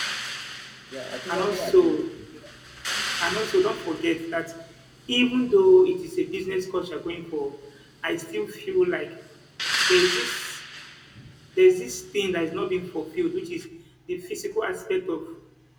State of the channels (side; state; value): both; identical; correlation 1.00